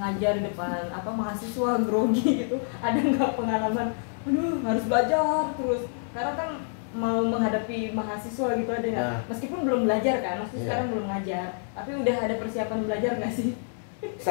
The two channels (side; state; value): right; silent; 60 dB below the other